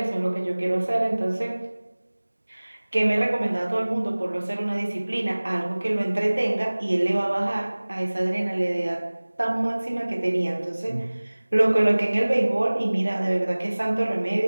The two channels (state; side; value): inverted; both; correlation -1.00